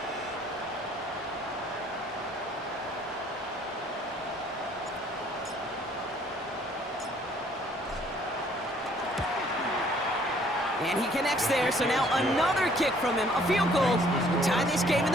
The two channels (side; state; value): both; normal; correlation 0.60